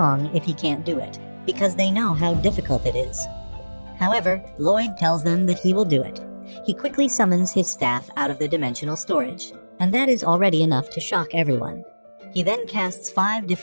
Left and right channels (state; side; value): inverted; both; correlation -1.00